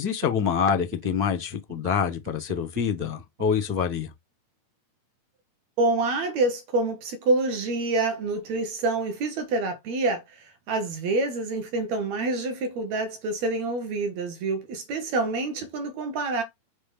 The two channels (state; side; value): late; left; 8.8 ms